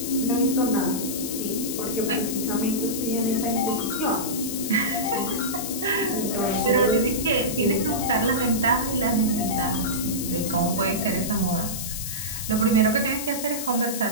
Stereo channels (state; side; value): noise; left; hiss, 5 dB below the sound